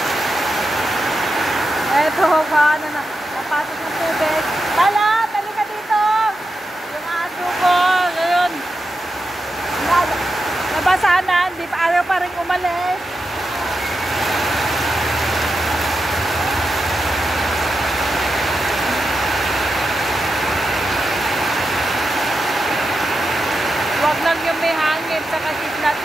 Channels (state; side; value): normal; both; correlation 0.88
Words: Eto, paano na, napasok ng tubig. Tala, tali ka dito! Yung aso ko, ngayon. Nabasahan na, hindi pa ayaw pa rin umalis. Huwag lang yung may hangin, saka kidlat,